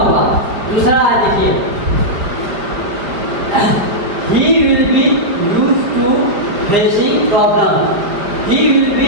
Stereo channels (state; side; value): late; left; 5.1 ms